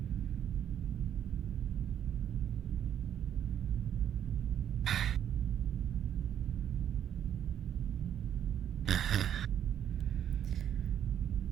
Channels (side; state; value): left; quieter; 9.7 dB